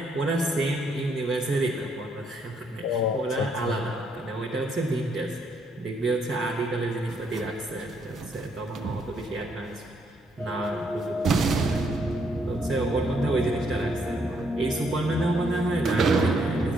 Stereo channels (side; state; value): both; normal; correlation 0.72